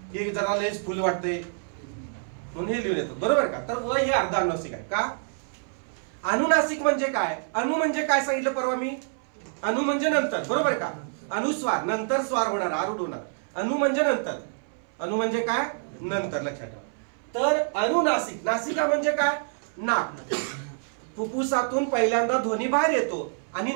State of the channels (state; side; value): silent; left; 60 dB below the other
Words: हे जरा लयच फुल वाटतंय म्हणून हे लिहून येतात. बरोबर का? तर व हे अर्ध अनुनासिक आहे का? अनुनासिक म्हणजे काय? अनु म्हणजे काय सांगितलं परवा मी? अनु म्हणजे नंतर. बरोबर का? अनुस्वार, नंतर स्वार होणार, आरूढ होणार. अनु म्हणजे नंतर. अनु म्हणजे काय? नंतर. लक्षात ठेवा. तर अनुनासिक, नासिका म्हणजे काय? नाक. फुफ्फुसातून पहिल्यांदा ध्वनी बाहेर येतो आणि